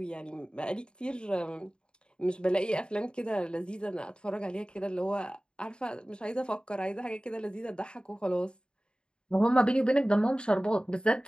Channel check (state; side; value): late; right; 0.051 ms